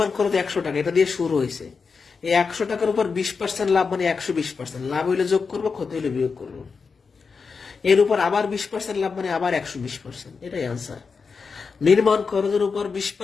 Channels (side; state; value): right; quieter; 5.1 dB